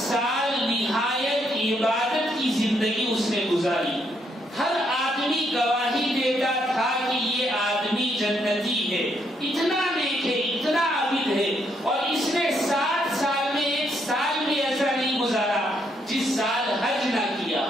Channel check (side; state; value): both; normal; correlation 0.74